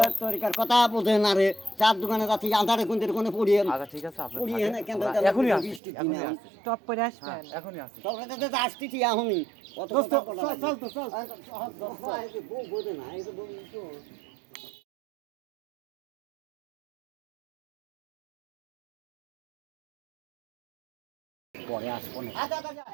তরিকার কথা বোঝে না রে চার দোকানে যাচ্ছি আধারে কোন কোনে পড়িয়ে আচ্ছা ঠিক আছে আপনি পড়িয়ে না কেন এখনই আসছি বৃষ্টির এখনই দিনে। আসছি টপ করে আসবেন এখনই আসছি তবে তো আসতেছি এখনই কত দোস্ত, কথা বলা চল, লাগে। চল তো, চল। এই যে বউ বোঝে না এই যে বউ তো পরে আসবো না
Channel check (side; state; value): left; drops out; at 5.8 s